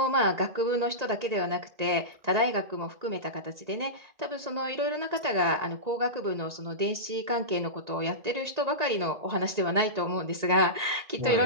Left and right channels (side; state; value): left; late; 1.9 ms